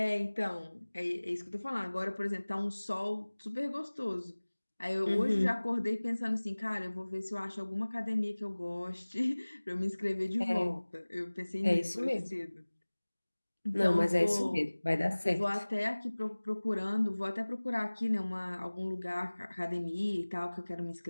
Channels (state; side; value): inverted; both; correlation -1.00